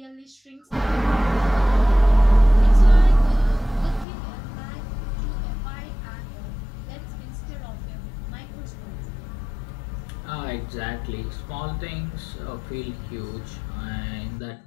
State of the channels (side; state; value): right; drops out; at 4.0 s